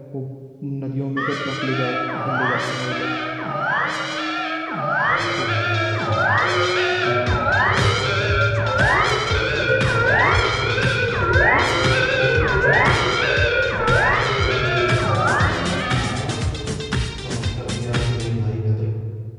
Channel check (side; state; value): both; identical; correlation 1.00